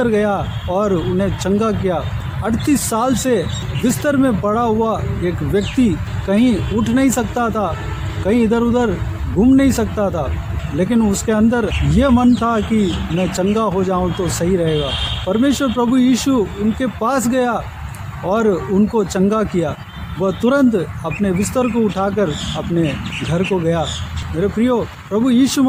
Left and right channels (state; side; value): identical; both; correlation 1.00